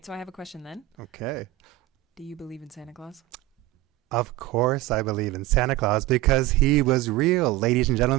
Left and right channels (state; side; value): quieter; left; 18.2 dB